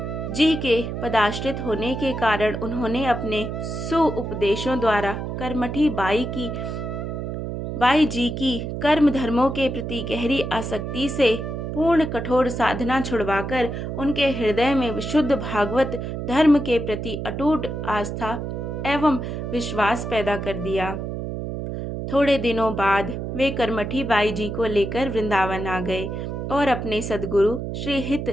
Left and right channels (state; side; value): noise; right; hum, 5 dB below the sound